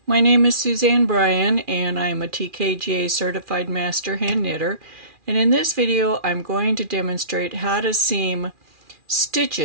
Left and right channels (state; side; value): late; left; 2.4 ms